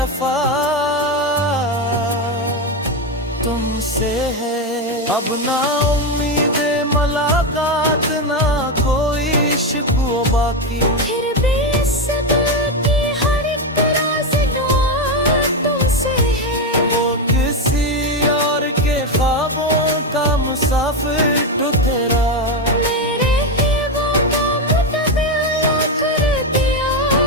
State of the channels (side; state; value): both; normal; correlation 0.10